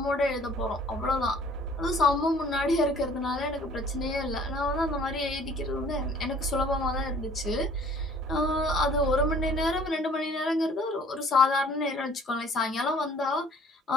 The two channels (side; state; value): both; normal; correlation 0.54